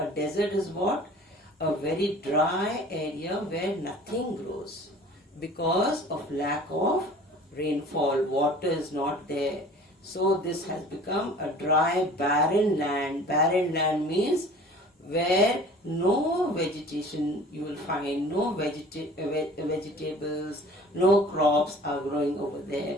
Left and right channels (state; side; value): normal; both; correlation 0.46